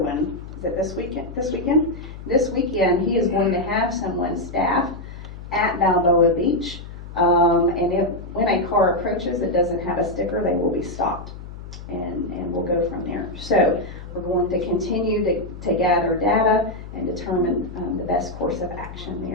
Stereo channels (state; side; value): noise; left; hum, 13 dB below the sound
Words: one. Is it this weekend? This weekend, he is going to have someone staffed at Balboa Beach. When a car approaches that doesn't have a sticker, they will be stopped, and we'll go from there. So we're going to continue to gather data and determine the best course of action